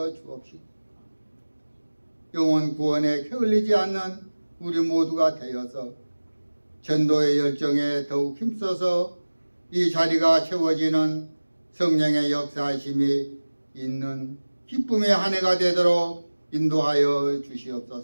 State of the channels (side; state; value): both; inverted; correlation -1.00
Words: 주옵시고, 영혼 구원에 게을리지 않는 우리 모두가 되어서 전도의 열정에 더욱 힘써서 이 자리가 채워지는 성령의 역사하심이 있는 기쁨의 한 해가 되도록 인도하여